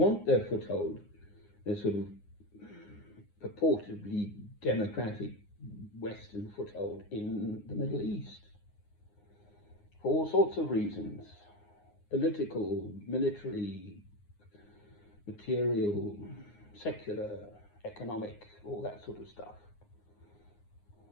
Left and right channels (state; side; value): late; right; 9.7 ms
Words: their foothold, their sort of purportedly democratic Western foothold in the Middle East. For all sorts of reasons. Political, military, material, secular, economic, all that sort of stuff.